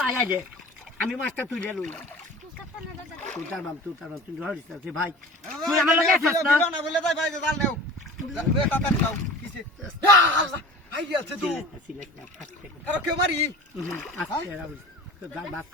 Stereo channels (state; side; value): normal; both; correlation 0.39